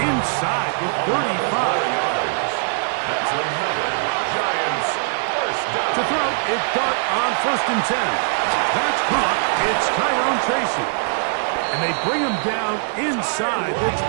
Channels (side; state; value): left; silent; digital silence